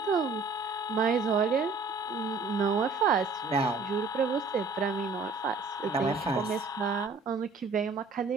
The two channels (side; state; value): left; quieter; 4.0 dB